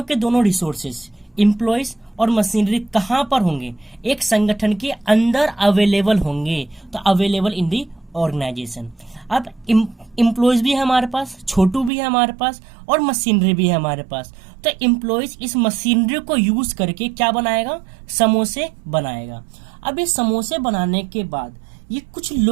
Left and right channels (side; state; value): left; drops out; at 11.9 s